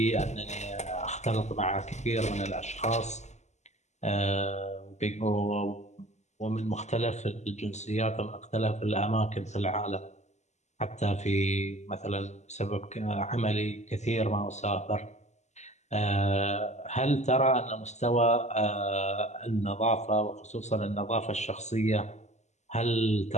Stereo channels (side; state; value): right; late; 0.33 ms